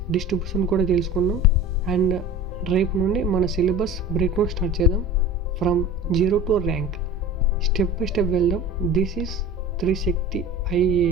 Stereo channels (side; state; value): both; normal; correlation 0.37